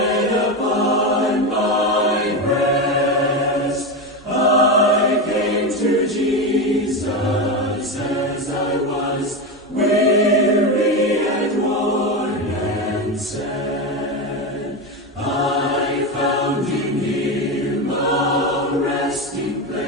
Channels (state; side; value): normal; both; correlation 0.16